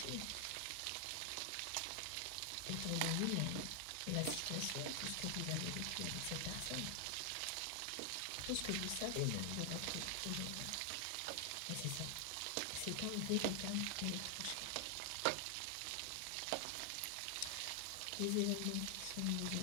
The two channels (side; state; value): both; different; correlation 0.00